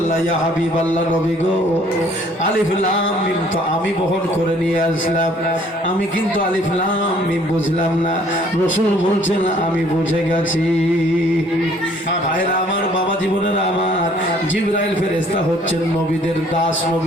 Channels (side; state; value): both; normal; correlation 0.59